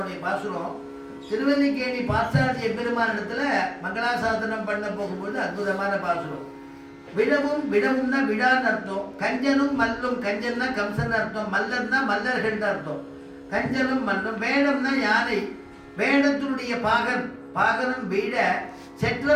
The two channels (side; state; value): both; identical; correlation 1.00